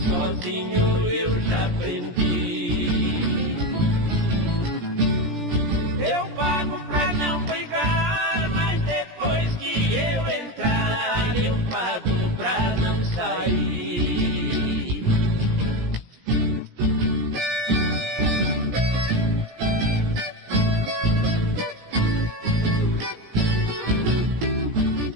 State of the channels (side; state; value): left; late; 17 ms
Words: sozinho eu já aprendi. Eu pago pra não brigar, mas depois que eu entrar, eu pago pra não sair.